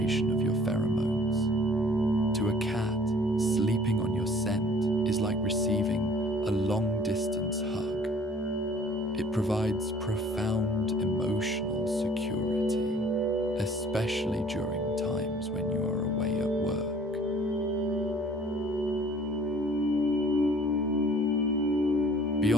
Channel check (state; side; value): normal; both; correlation 0.54